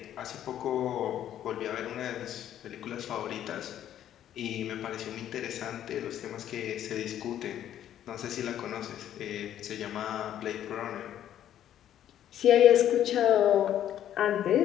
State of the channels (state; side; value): quieter; right; 11.0 dB